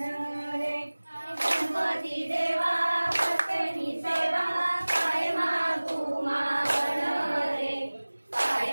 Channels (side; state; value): both; inverted; correlation -1.00